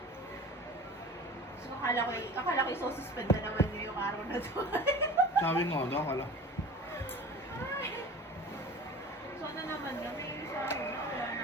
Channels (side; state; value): both; normal; correlation 0.39